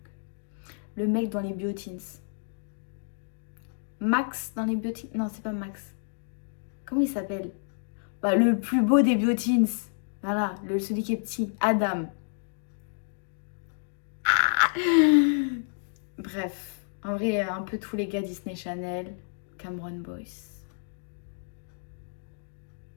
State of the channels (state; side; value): silent; right; digital silence